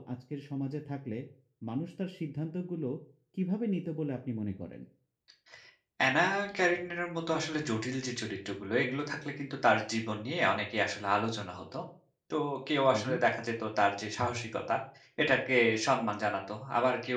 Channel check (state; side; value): identical; both; correlation 1.00